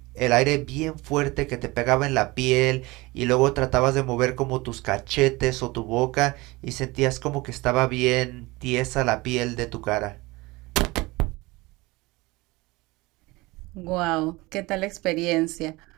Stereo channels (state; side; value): quieter; left; 22.3 dB